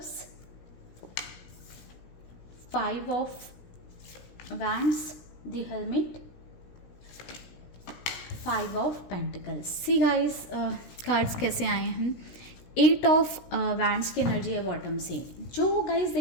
5 of wands, the helmet, 5 of pentacles. See guys, cards कैसे आए हैं। 8 ऑफ वैंड्स की एनर्जी है बॉटम से। जो गाइस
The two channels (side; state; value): right; late; 17 ms